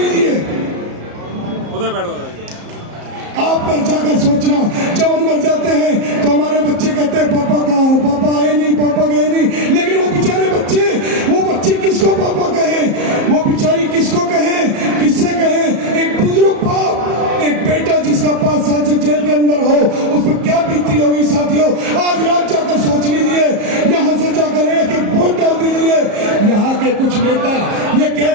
उधर बैठ वाला आप घर जाकर सोचना, जब हम घर जाते हैं तो हमारे बच्चे कहते हैं पापा कहाँ हो, पापा आए नहीं, पापा गए नहीं। लेकिन वो बेचारे बच्चे किसको पापा कहे, वो बेचारी किसको कहे, किससे कहे। एक बुजुर्ग बाप, एक बेटा जिसका 5 साल से जेल के अंदर हो, उस पर क्या बीती होगी साथियों। आज रात जाकर सोच लीजिए, यहाँ से जाकर एक वोट डाल दीजिए। यहाँ के कुछ नेता ये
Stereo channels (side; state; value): left; late; 34 ms